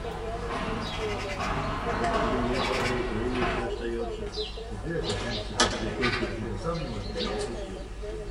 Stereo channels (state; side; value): identical; both; correlation 1.00